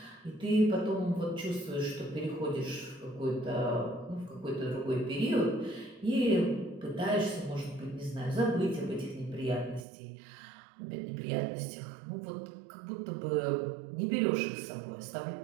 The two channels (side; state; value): left; drops out; at 9.9 s